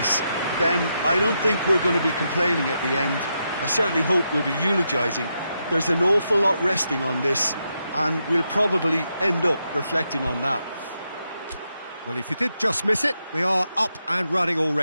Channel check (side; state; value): both; inverted; correlation -0.83